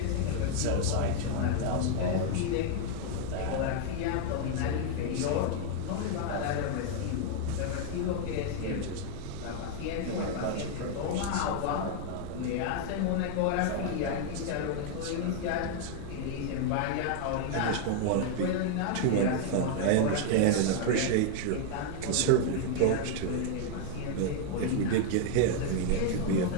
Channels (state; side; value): different; both; correlation 0.00